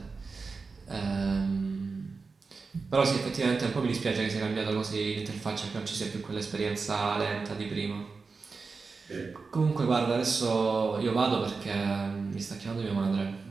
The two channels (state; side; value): quieter; left; 4.5 dB